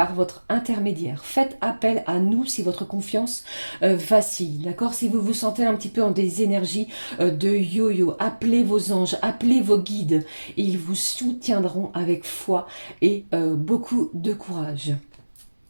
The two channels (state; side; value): inverted; both; correlation -1.00